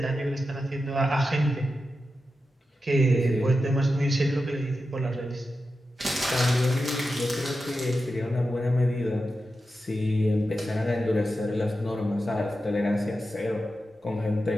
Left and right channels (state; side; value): normal; both; correlation 0.90